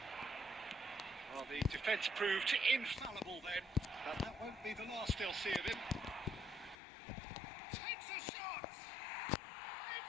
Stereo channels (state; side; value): drops out; right; at 6.8 s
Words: Well, the defence proved infallible then, but that won't be the last they'll see of him. Takes a shot!